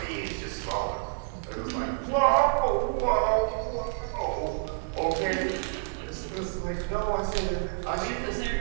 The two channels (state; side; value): silent; left; digital silence